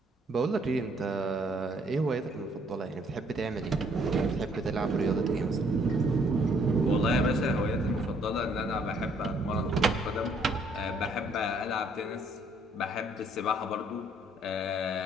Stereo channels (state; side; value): normal; both; correlation 0.65